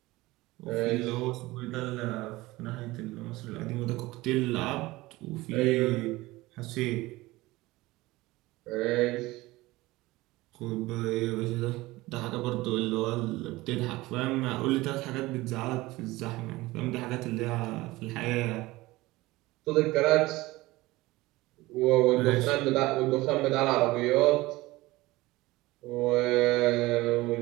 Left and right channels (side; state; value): left; quieter; 19.7 dB